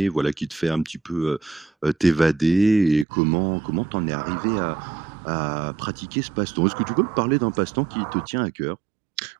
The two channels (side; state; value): left; drops out; at 3.1 s